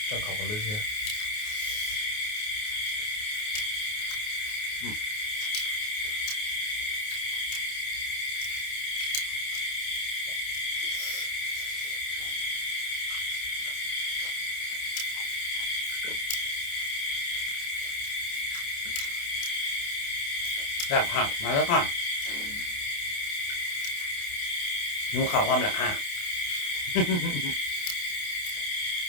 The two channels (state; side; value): late; right; 28 ms